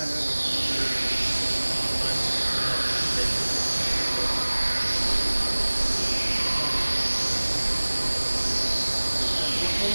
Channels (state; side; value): inverted; both; correlation -1.00